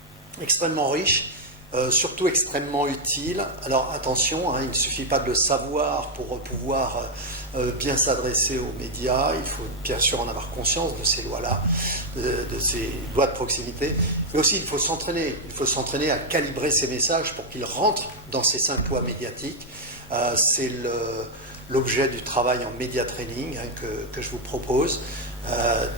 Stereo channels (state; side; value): normal; both; correlation 0.00